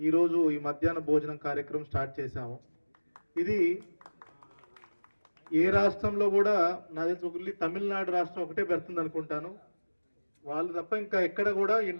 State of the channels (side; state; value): both; inverted; correlation -1.00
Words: ఈరోజు ఈ మధ్యాహ్న భోజనం కార్యక్రమం స్టార్ట్ చేశాము. ఇది ఏ రాష్ట్రంలో కూడా నా తెలిసి ఒకటి తమిళనాడు రాష్ట్రం ఒకటే పెడుతుంది అనుకుంటాను. వాళ్ళు తప్ప ఇంకా ఎక్కడ కూడా